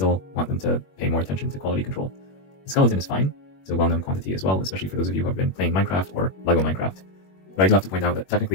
want them to pay more attention to quality control. The skeleton is fine. It's a well-known quantity as well, especially for those of you who have been playing Minecraft or LEGO Minecraft. But I do have to point out that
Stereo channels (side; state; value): right; late; 21 ms